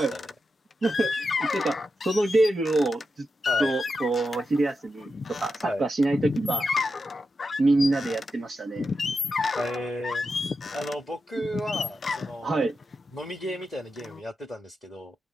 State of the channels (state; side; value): normal; both; correlation 0.88